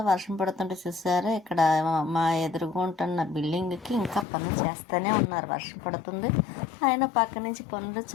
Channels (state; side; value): drops out; right; at 4.2 s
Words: వర్షం పడుతుంటే చూసారా, ఇక్కడ మా ఎదురుగా ఉంటున్న బిల్డింగ్కి ఇంకా పనులు చేస్తూనే ఉన్నారు. వర్షం పడుతుంది, ఆయన పక్క నుంచి పనులు